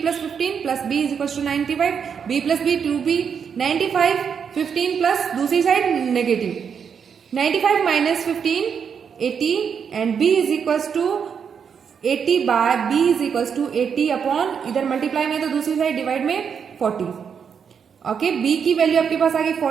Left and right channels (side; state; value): left; quieter; 6.9 dB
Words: plus 15 plus B is equals to 95. B plus B 2B 95, 15 plus दूसरी side negative. 95 minus 15 80 and B is equals to 80 by B is equals to 80 upon इधर multiply में तो दूसरी side divide में 40. Okay, B की value आपके पास आ गई